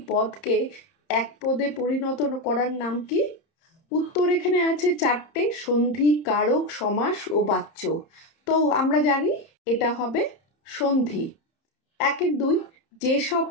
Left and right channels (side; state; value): right; late; 30 ms